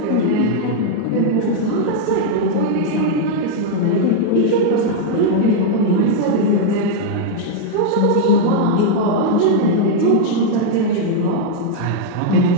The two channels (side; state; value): both; different; correlation 0.00